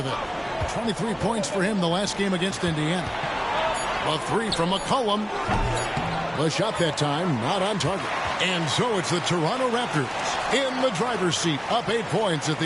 it. 23 points for him the last game against Indiana. A three from McCollum. The shot that time, not on target. And so it's the Toronto Raptors in the driver's seat, up 8 points at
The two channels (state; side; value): identical; both; correlation 1.00